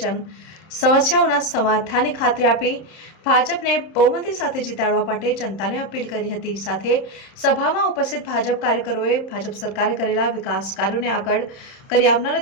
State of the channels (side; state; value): right; late; 31 ms